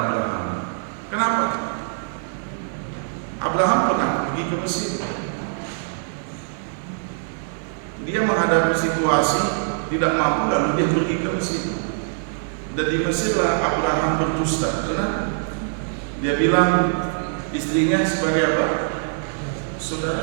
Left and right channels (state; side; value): silent; left; 59 dB below the other